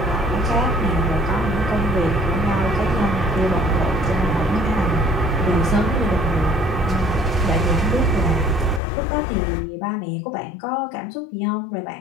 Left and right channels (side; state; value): right; drops out; at 8.8 s